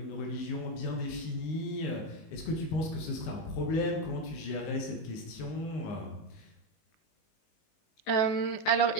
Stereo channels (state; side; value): late; right; 19 ms